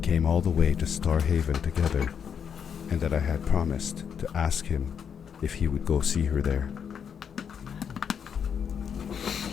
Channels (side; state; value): right; quieter; 7.5 dB